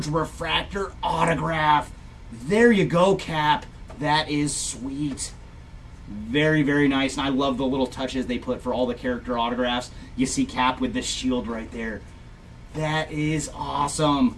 Refractor autograph. There you go, Cap. That is sweet. Very, very nice. And I love the little touches they put for all the character autographs. You see Cap with the shield right there. That is awesome.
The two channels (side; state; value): both; identical; correlation 1.00